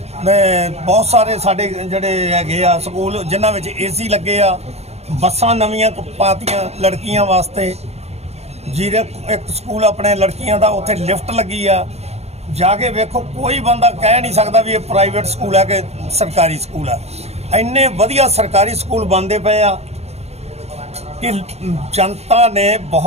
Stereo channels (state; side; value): late; left; 0.31 ms